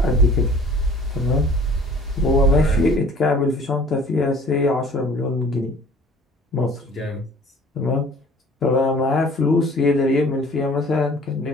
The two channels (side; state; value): both; normal; correlation 0.50